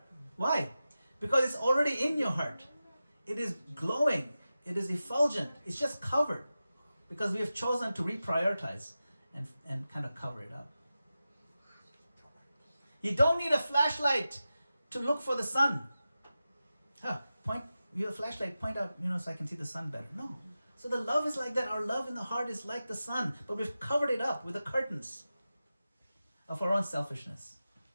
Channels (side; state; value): both; inverted; correlation -0.93